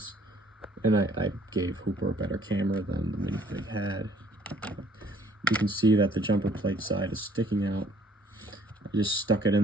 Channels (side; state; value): both; normal; correlation 0.60